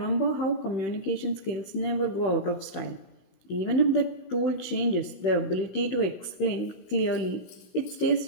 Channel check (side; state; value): right; late; 16 ms